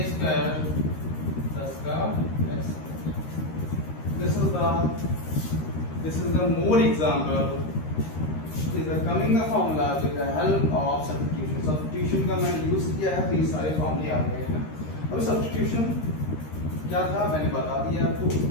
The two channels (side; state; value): right; late; 13 ms